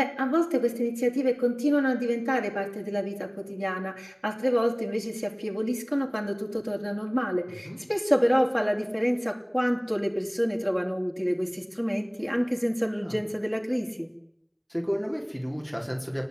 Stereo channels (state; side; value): identical; both; correlation 1.00